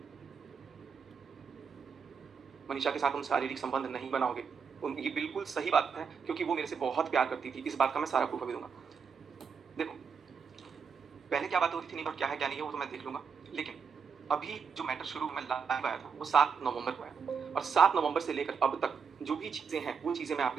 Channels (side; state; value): left; quieter; 6.1 dB